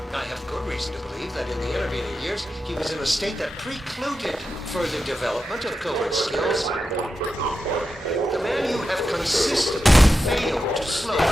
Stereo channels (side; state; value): both; normal; correlation 0.90